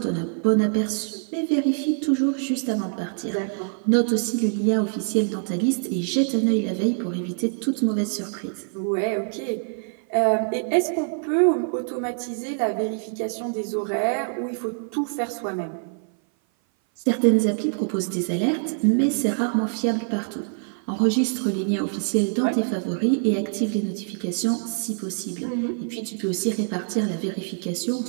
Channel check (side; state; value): left; silent; 57 dB below the other